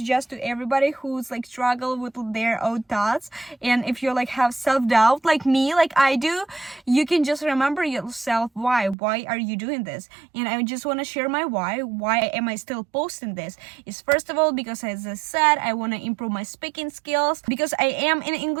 to everybody who's like struggle with their own thoughts, and if you like have self-doubt like me, like I do, you can just remember yourself why are you doing this. And I just want to share my why am I still posting this. Is first of all because, as I said, I want to improve my speaking skills, because I am in an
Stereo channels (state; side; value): drops out; left; at 9.0 s